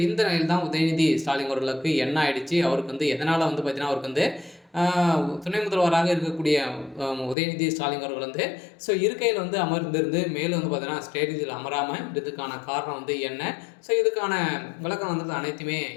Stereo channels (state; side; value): drops out; right; at 7.4 s